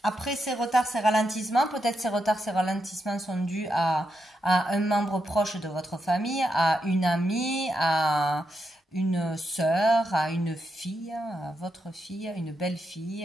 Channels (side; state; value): both; normal; correlation 0.84